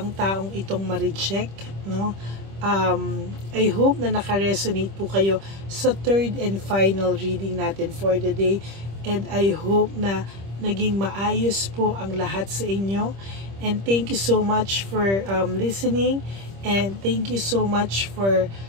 taong itong ma-reject, no? I hope na naka-resonate po kayo sa third and final reading natin for the day. And I hope na naging maayos po ang lahat sa inyo. And thank you so much for listening. And thank you so much for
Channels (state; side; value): late; left; 25 ms